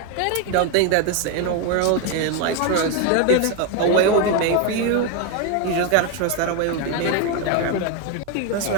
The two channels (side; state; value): both; different; correlation 0.02